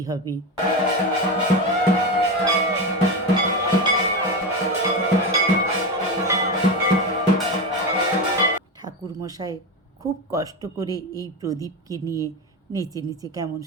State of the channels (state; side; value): normal; both; correlation 0.18